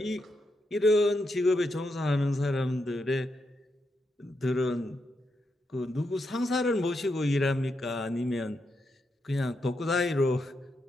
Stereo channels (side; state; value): both; normal; correlation 0.83